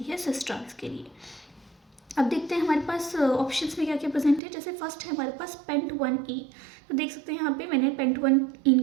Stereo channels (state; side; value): drops out; left; at 4.4 s